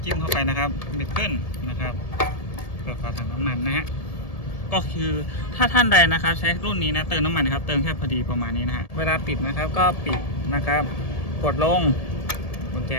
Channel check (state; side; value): late; right; 1.7 ms